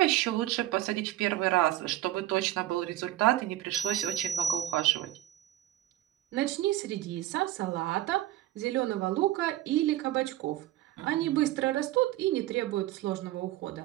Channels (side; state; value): left; quieter; 14.6 dB